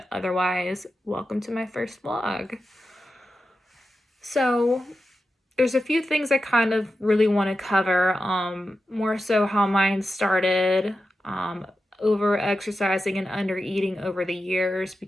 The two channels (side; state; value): both; normal; correlation 0.91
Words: Otherwise, welcome to my first vlog. So, there's a few things I kind of really want to cover. More so how mine started, over exercising and under eating over the years,